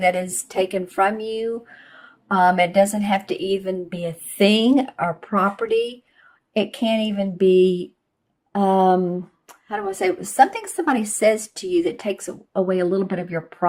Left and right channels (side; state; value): both; identical; correlation 1.00